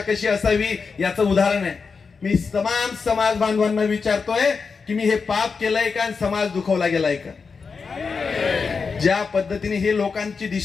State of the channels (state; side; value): quieter; right; 5.1 dB